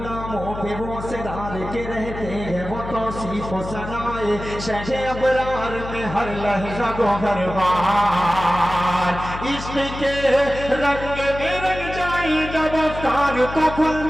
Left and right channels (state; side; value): noise; left; hum, 10 dB below the sound